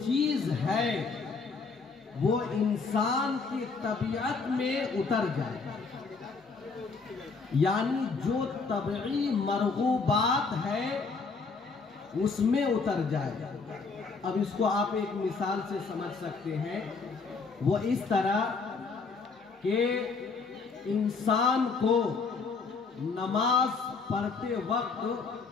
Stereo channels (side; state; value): right; quieter; 4.6 dB